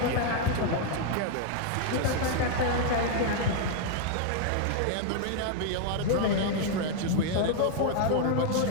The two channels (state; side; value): different; both; correlation 0.00